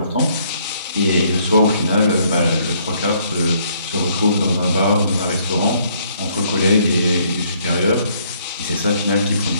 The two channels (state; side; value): inverted; both; correlation -0.66